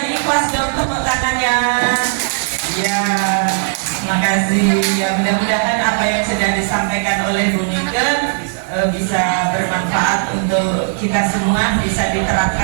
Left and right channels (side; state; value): left; silent; digital silence